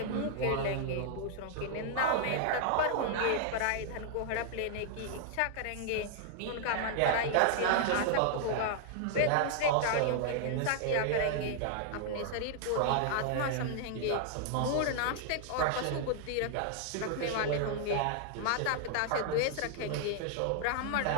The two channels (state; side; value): different; both; correlation -0.01